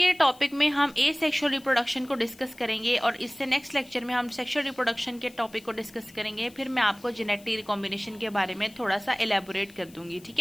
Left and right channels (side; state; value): left; noise; hiss, 24 dB below the sound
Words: टॉपिक में हम एसेक्सुअल रिप्रोडक्शन को डिस्कस करेंगे और इससे नेक्स्ट लेक्चर में हम सेक्सुअल रिप्रोडक्शन के टॉपिक को डिस्कस करेंगे। फिर मैं आपको जेनेटिक रिकॉम्बिनेशन के बारे में थोड़ा सा एलैबोरेट कर दूंगी। ठीक